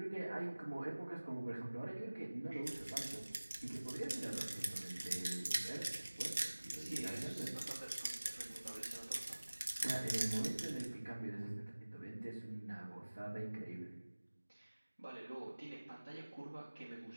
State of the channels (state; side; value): inverted; both; correlation -1.00